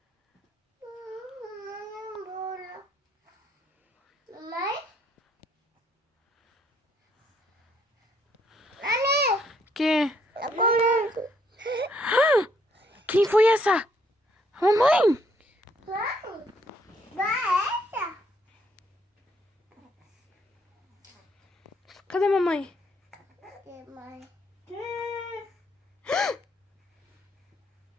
Mamãe? Mamãe? Que? Eu comendo. Quem foi essa? Mamãe! Mãe? Vai essa? Cadê mamãe? Que mãe?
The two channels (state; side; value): normal; both; correlation 0.69